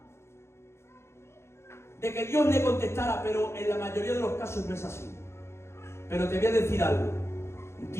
de que Dios le contestara, pero en la mayoría de los casos no es así. Pero te voy a decir algo.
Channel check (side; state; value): right; late; 0.13 ms